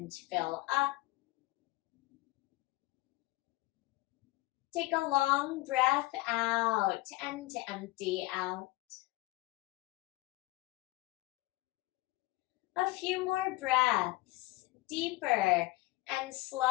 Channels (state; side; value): quieter; right; 20.3 dB